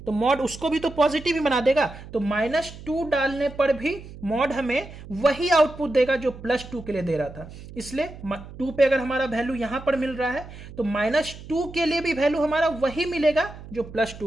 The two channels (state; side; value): noise; right; hum, 15 dB below the sound